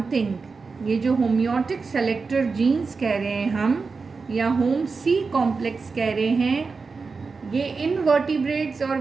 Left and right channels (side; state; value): left; quieter; 4.6 dB